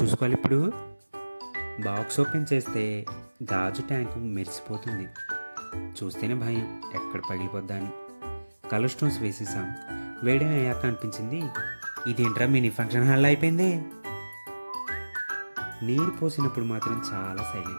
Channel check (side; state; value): both; inverted; correlation -1.00